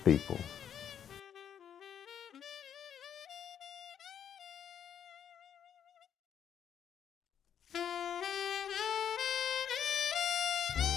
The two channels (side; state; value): right; quieter; 8.9 dB